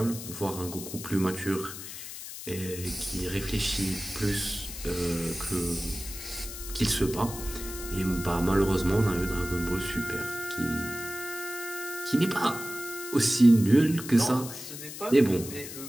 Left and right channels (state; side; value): noise; left; hiss, 10 dB below the sound